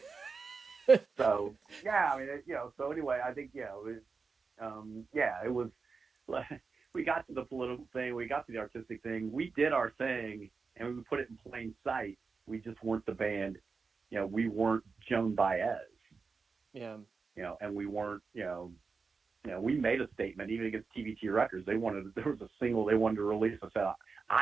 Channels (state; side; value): quieter; left; 4.8 dB